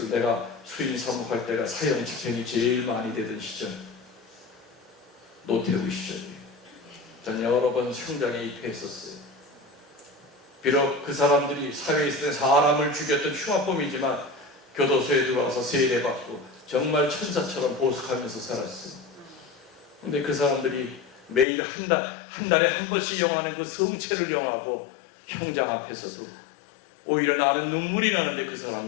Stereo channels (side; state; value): right; drops out; at 21.5 s